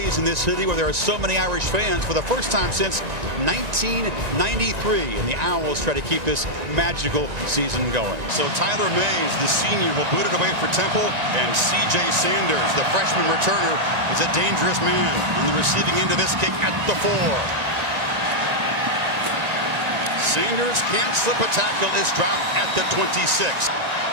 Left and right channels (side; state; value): left; late; 1.9 ms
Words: in this city where there are so many Irish fans for the first time since 1993. And the Owls try to keep this magical season going. So Tyler Mays, the senior, will boot it away for Temple. And C.J. Sanders, the freshman returner, is a dangerous man on the receiving end of this kick at the 4. Sanders can't slip a tackle, is dropped at the 26.